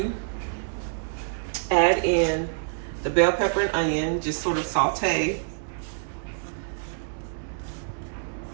add in the bell pepper and onion, just sort of saute.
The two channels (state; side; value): silent; left; digital silence